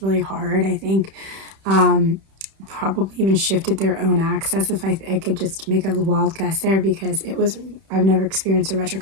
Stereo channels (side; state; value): left; late; 31 ms